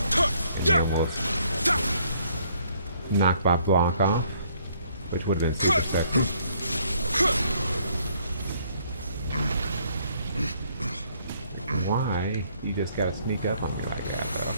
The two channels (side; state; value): both; inverted; correlation -0.65